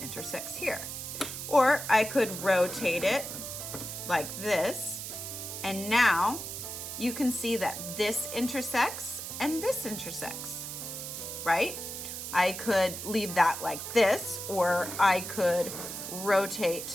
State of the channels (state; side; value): noise; right; hiss, 7 dB below the sound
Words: intersects here. Or I could rotate it like this, and now you can see that this intersects and this intersects, right? I could leave that like this, or I could